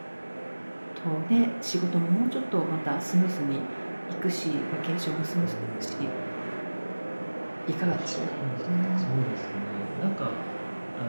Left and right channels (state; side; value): inverted; both; correlation -1.00